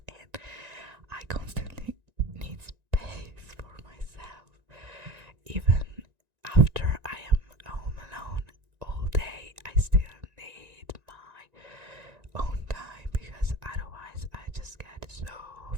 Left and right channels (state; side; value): late; left; 1.9 ms